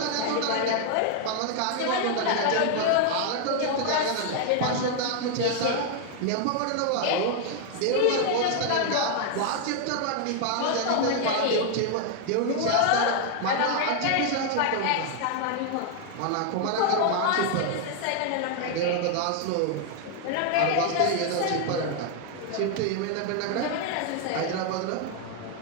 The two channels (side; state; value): both; different; correlation 0.00